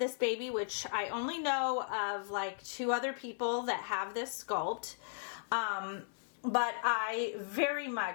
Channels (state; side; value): silent; right; 54 dB below the other